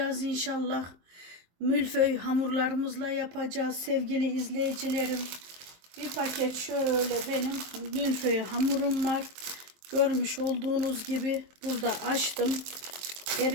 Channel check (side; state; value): left; late; 23 ms